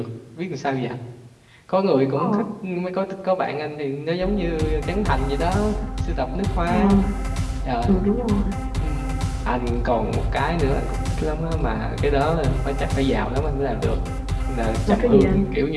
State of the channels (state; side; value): identical; both; correlation 1.00